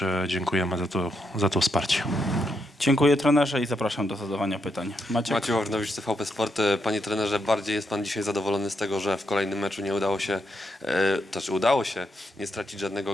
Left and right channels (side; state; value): both; normal; correlation 0.81